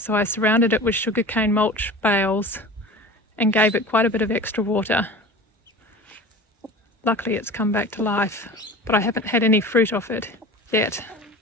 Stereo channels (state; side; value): normal; both; correlation 0.37